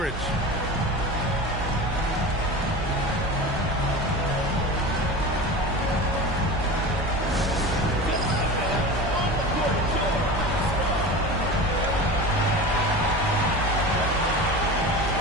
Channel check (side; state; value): both; normal; correlation 0.31